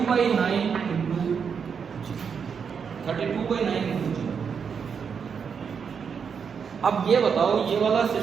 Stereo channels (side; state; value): left; quieter; 6.5 dB